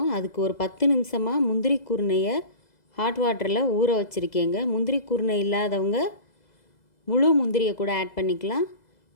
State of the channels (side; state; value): right; late; 2.0 ms